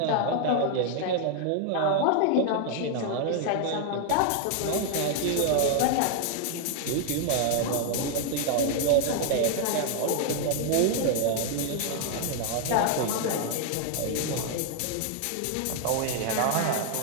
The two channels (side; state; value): both; different; correlation 0.00